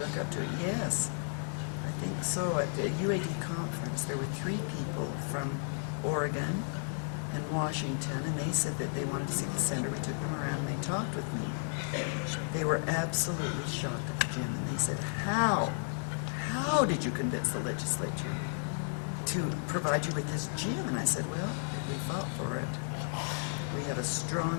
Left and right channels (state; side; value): silent; right; 56 dB below the other